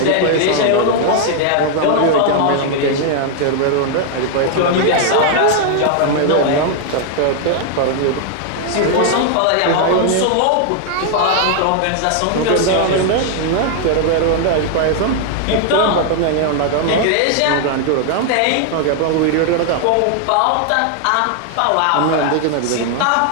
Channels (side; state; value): both; different; correlation 0.00